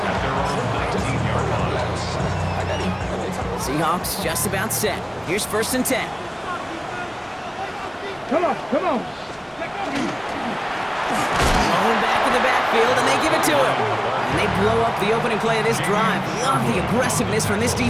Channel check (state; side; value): identical; both; correlation 1.00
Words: Seahawks just about set. Here's 1st and 10. Come on. Going back in the backfield, and they give it to him. And they blow up the opening play of this drive. Love the aggressiveness from this